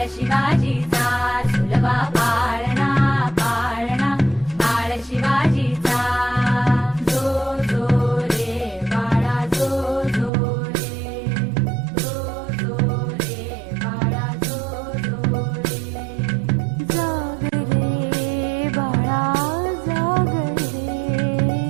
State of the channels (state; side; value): drops out; left; at 10.3 s